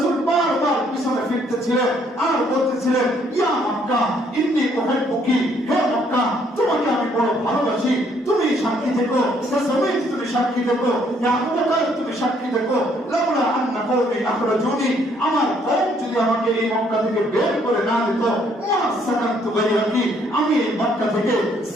বারবার পিছনে ফিরতেছিলেন আর বলতেছিলেন, ইয়া মক্কা ইন্নী উহিব্বুকি, হে মক্কা, তোমাকে আমি বড় ভালোবাসি, তুমি সাক্ষী থেকো, রাসূল তুমি সাক্ষী থেকো, ইয়া আবু বকর তুমি সাক্ষী থেকো, লাউলা আন্না কওমি আখরাজুনি, আমার কওম যদি আমাকে এই মক্কা থেকে বের করে না দিত, মা সাকানতু গায়রাকি, আমি এই মক্কা থেকে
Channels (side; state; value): both; normal; correlation 0.67